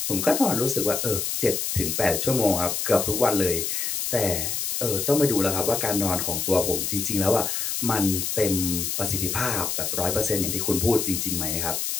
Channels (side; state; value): left; noise; hiss, 1 dB below the sound